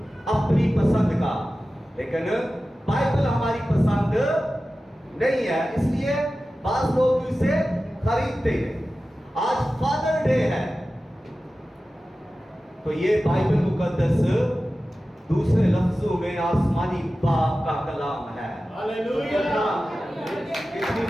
अपनी पसंद का, लेकिन बाइबल हमारी पसंद नहीं है, इसलिए बास लोग इसे खरीदते हैं। आज फादर डे है तो ये बाइबल मुकद्दस दूसरे लफ्जों में आसमानी बाप का कलाम है। हालेलुया! कितनी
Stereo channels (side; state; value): both; normal; correlation 0.95